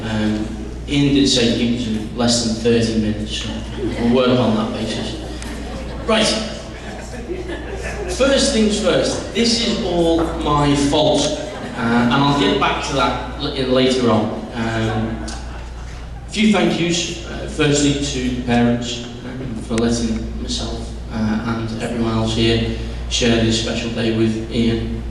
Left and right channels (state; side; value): identical; both; correlation 1.00